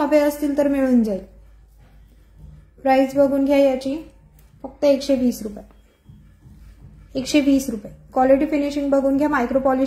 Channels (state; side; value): identical; both; correlation 1.00